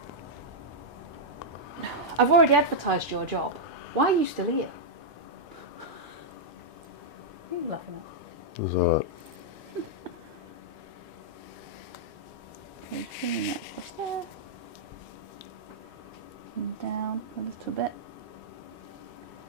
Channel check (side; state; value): both; normal; correlation -0.06